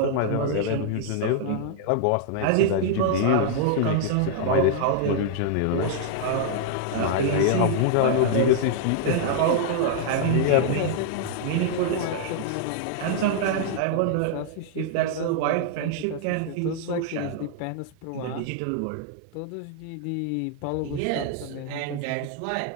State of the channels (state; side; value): different; both; correlation -0.01